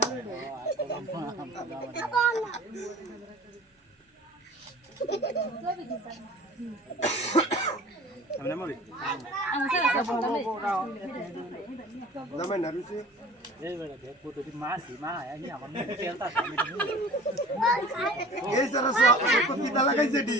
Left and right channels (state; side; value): normal; both; correlation 0.43